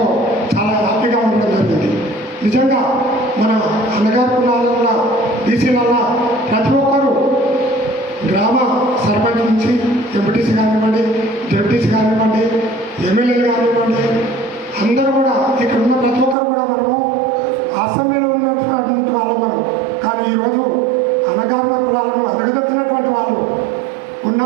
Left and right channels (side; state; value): left; drops out; at 16.4 s